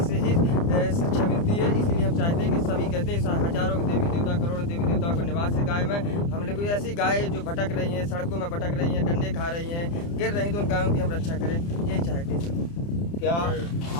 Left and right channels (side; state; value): right; late; 30 ms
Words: से ही शिक्षा मिलती है, इसलिए हम चाहते हैं कि सभी कहते हैं हजारों देवी देवता, करोड़ों देवी देवताओं का निवास है गाय में। हम लोग ऐसी गाय जो भटक रही हैं, सड़कों में भटक रही हैं, डंडे खा रही हैं, गिर रही, तो उन गायों की हम रक्षा करें, यही चाहते हैं। क्या